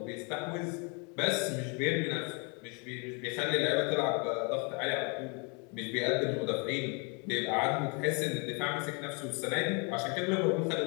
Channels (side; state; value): right; quieter; 33.9 dB